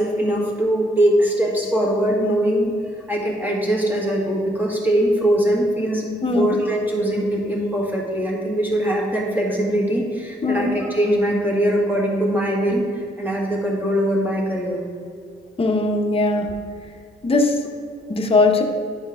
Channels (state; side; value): normal; both; correlation 0.68